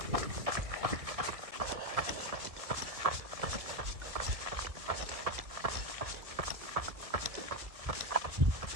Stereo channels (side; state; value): left; late; 1.6 ms